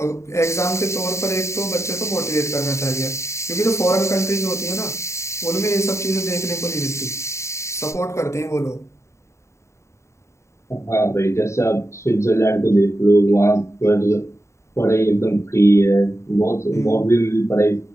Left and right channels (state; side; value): late; right; 0.14 ms